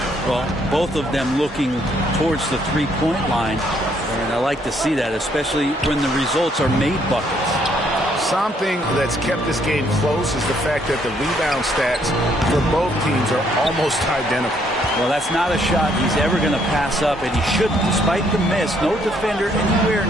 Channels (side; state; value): both; normal; correlation 0.69